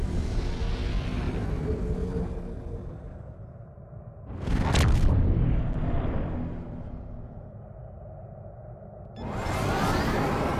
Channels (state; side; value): identical; both; correlation 1.00